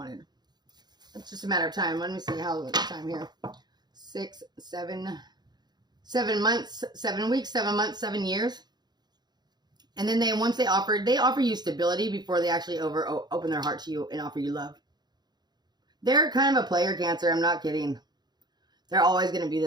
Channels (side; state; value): left; late; 0.20 ms